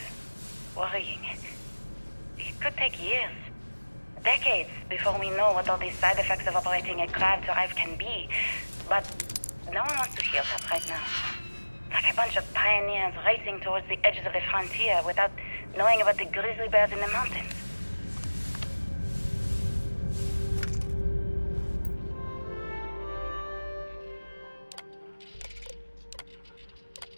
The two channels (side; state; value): both; inverted; correlation -1.00